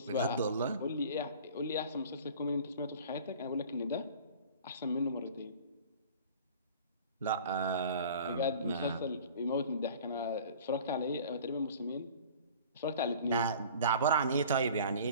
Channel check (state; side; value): inverted; both; correlation -0.45